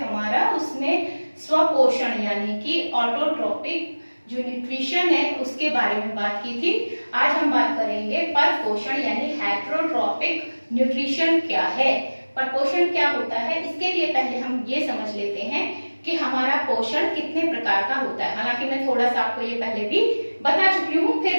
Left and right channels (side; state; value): both; inverted; correlation -1.00